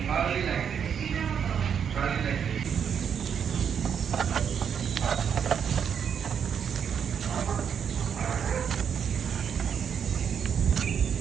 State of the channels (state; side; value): quieter; left; 7.7 dB